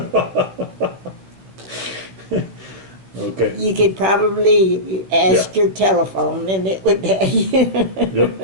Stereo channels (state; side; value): late; left; 15 ms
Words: Okay. You could probably ask Yeah. your telephone and it would tell you. Yep.